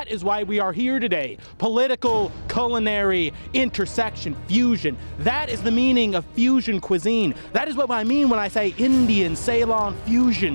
is why we are here today. Political, culinary, intersection, fusion. That is the meaning of fusion cuisine. That is what I mean when I say Indian Ceylon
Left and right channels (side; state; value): both; inverted; correlation -1.00